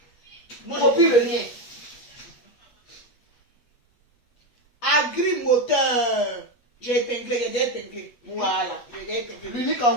Copie le lien. Agrimoteur. J'ai épinglé, Voilà. L'unique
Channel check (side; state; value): right; late; 8.3 ms